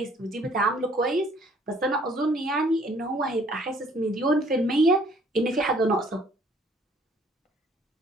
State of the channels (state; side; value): normal; both; correlation 0.60